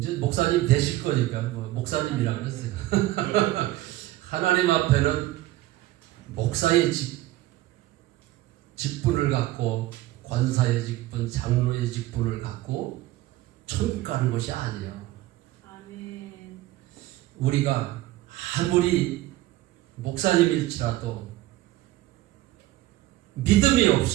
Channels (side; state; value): left; quieter; 16.5 dB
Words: 목사님 되실 거니까 목사님이라 그랬어요. 하나님 앞에는 목사의 직분을 갖고 권사의 직분, 장로의 직분을 갖고 천국 가는 것이 아니에요. 아멘. 우리가 아무리 목사님일지라도 믿음이